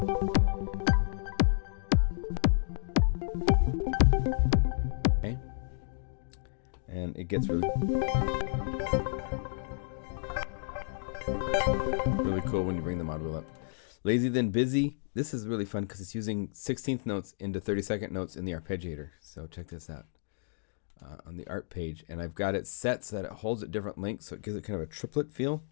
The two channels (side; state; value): right; silent; digital silence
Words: Okay. And it gets really cool when you bring the mod wheel up. Lazy Then Busy. This is really fun because it's using 16th notes into 32nd notes in the arpeggiator. So check this out on the art page. And I've got it set so that it holds at different lengths, so it gives it kind of a triplet feel.